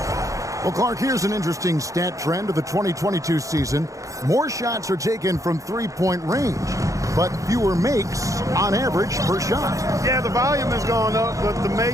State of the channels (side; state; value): left; late; 0.16 ms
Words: Well, Clark, here's an interesting stat trend of the 2022 season. More shots are taken from 3-point range, but fewer makes on average per shot. Yeah, the volume has gone up, but the